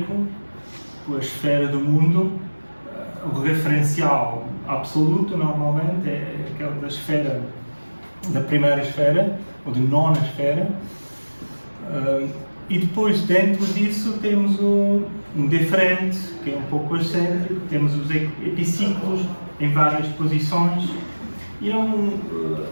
a esfera do mundo, o referencial absoluto normalmente é aquela da primeira esfera, ou de nona esfera, e depois dentro disso temos um deferente, que é um pouco excêntrico, temos os epiciclos em várias posições, e eu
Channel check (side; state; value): both; inverted; correlation -1.00